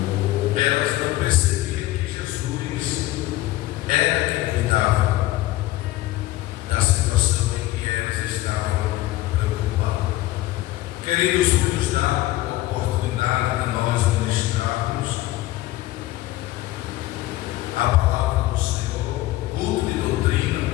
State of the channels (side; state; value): right; quieter; 16.5 dB